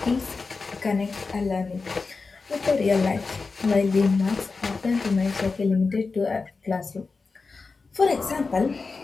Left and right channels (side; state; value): right; quieter; 4.3 dB